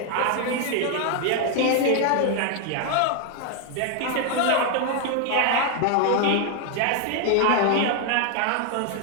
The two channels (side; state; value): both; different; correlation 0.01